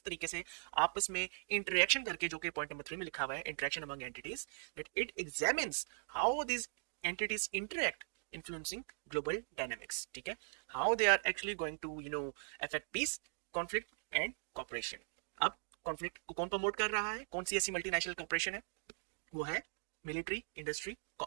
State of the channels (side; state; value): left; silent; digital silence